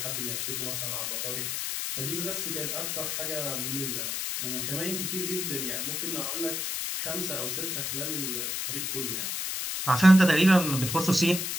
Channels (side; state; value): left; noise; hiss, 2 dB below the sound